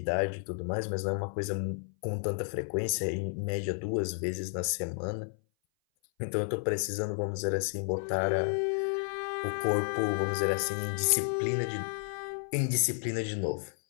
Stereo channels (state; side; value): silent; right; 57 dB below the other